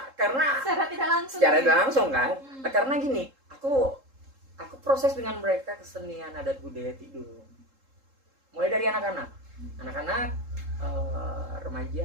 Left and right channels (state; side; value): late; left; 3.7 ms